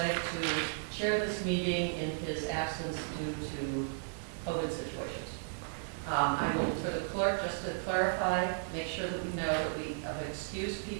to chair this meeting in his absence due to COVID situations. I will, for the clerk, just to clarify, make sure that we know that we have excused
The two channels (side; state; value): left; silent; 55 dB below the other